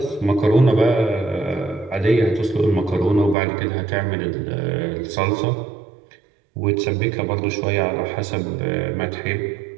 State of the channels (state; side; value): drops out; left; at 3.4 s